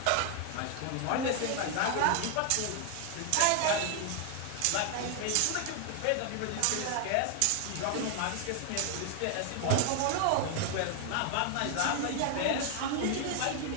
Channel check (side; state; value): both; different; correlation 0.00